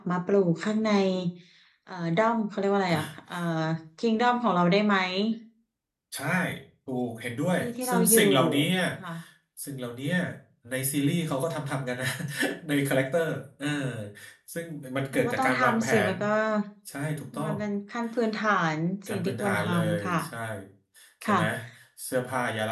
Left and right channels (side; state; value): both; identical; correlation 1.00